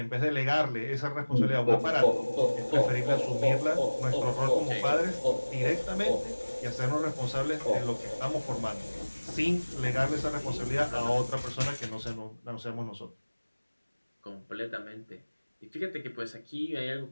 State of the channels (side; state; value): both; inverted; correlation -1.00